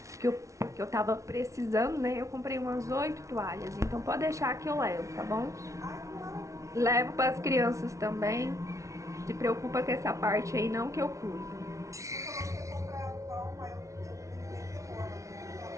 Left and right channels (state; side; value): late; left; 0.15 ms